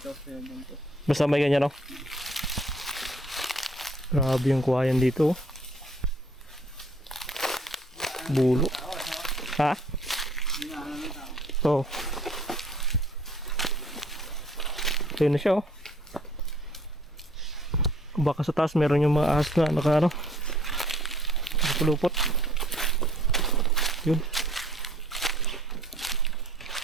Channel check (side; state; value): both; normal; correlation 0.58